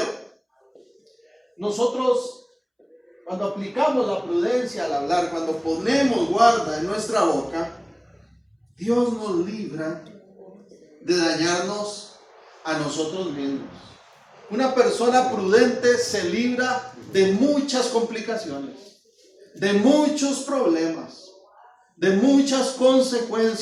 nosotros cuando aplicamos la prudencia al hablar, cuando ponemos guarda en nuestra boca, Dios nos libra de dañarnos a nosotros mismos. Una persona prudente se libra de muchas complicaciones, de muchos problemas, de muchas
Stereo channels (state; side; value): identical; both; correlation 1.00